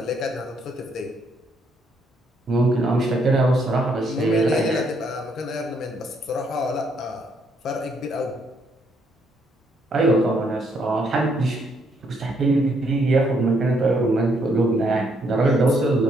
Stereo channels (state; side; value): normal; both; correlation 0.72